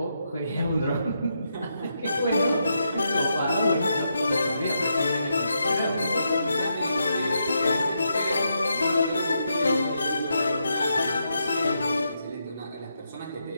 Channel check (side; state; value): both; inverted; correlation -0.81